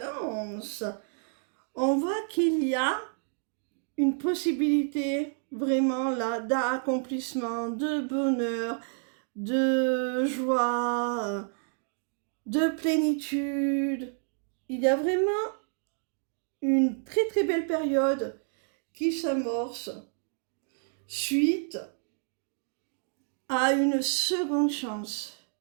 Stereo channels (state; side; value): silent; left; 58 dB below the other